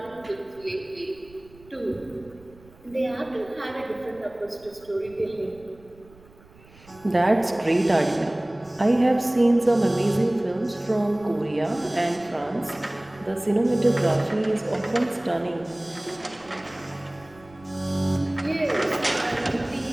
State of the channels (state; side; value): noise; right; rumble, 25 dB below the sound